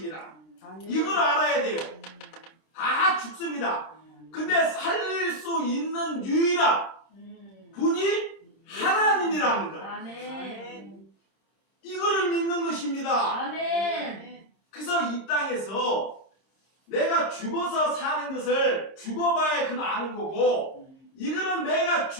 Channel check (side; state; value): right; late; 26 ms